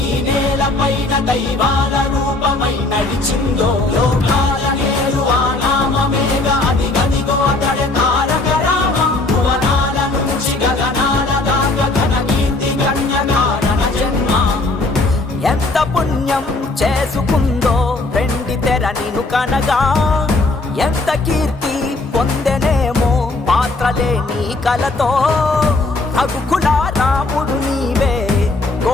ఈ నేల పైన దైవాల రూపమై నడిచిందో, లోకాల నేరు ఆ నామమేగా అది గదిగో అతడే తారక రామం. భువనాల నుంచి గగనాల దాకా ఘన కీర్తి గణ్య కారణ జన్మ. ఎంత పుణ్యం చేసుకుందో వెండి తెర నిను కనగా, ఎంత కీర్తి పొందెనేమో పాత్రలే నీ కలతో. రఘుకుల రాముడు నీవే,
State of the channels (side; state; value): right; quieter; 3.1 dB